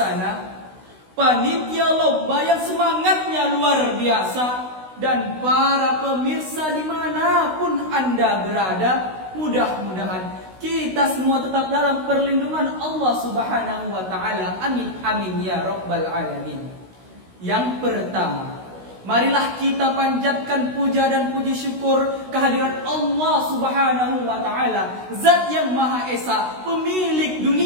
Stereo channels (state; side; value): late; left; 16 ms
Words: panitia lomba yang semangatnya luar biasa, dan para pemirsa dimanapun Anda berada, mudah-mudahan kita semua tetap dalam perlindungan Allah Subhanahu wa Ta'ala. Amin amin ya rabbal alamin. Yang pertama, marilah kita panjatkan puja dan puji syukur kehadirat Allah Subhanahu wa Ta'ala, Zat yang Maha Esa, pemilik